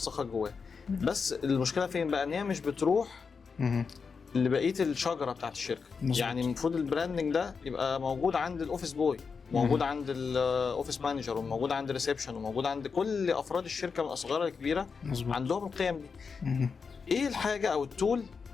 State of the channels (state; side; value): quieter; right; 5.4 dB